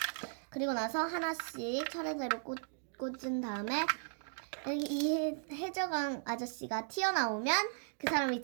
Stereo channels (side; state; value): left; silent; digital silence